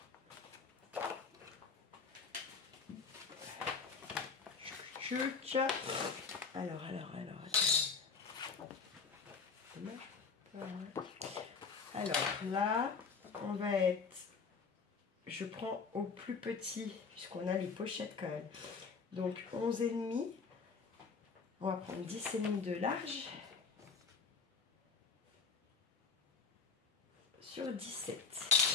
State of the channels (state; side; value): quieter; right; 5.1 dB